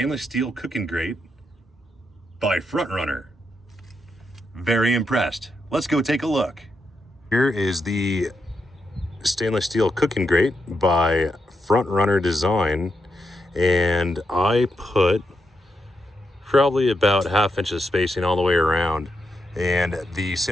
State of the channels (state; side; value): normal; both; correlation 0.83